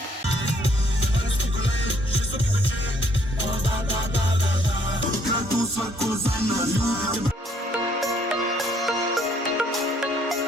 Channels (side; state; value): both; normal; correlation 0.66